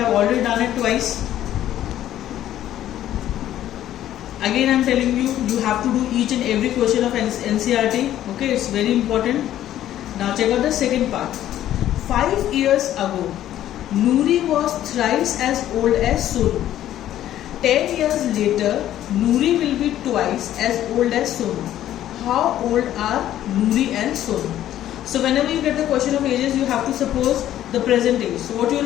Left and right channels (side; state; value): right; quieter; 12.3 dB